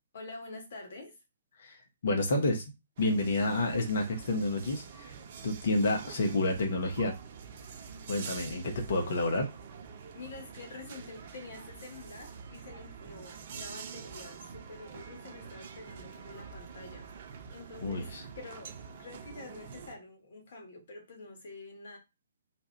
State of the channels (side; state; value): both; inverted; correlation -0.65